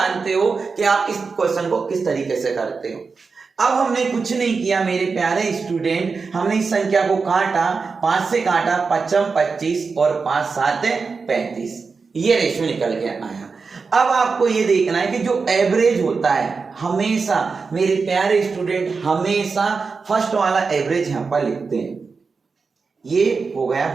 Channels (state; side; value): quieter; left; 4.8 dB